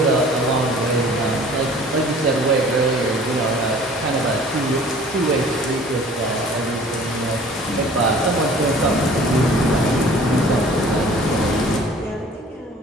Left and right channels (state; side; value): normal; both; correlation 0.49